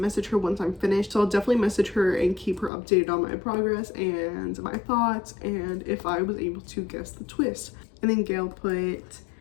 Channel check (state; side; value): drops out; right; at 2.7 s